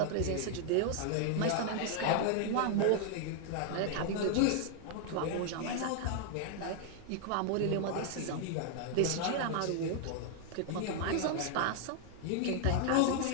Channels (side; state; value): both; different; correlation 0.00